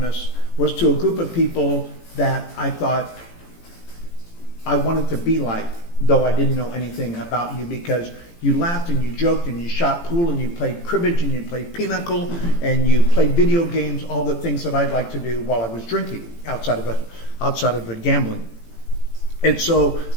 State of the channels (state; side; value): late; right; 18 ms